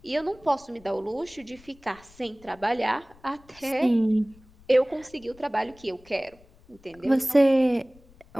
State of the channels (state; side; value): noise; left; rumble, 26 dB below the sound